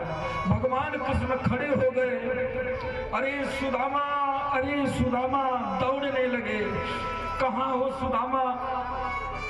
भगवान कृष्ण खड़े हो गए, अरे सुदामा, अरे सुदामा, दौड़ने लगे। कहाँ हो सुदामा?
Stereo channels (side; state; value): both; identical; correlation 1.00